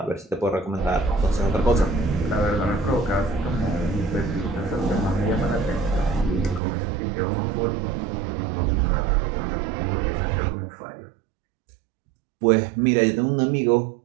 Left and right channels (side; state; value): left; drops out; at 6.6 s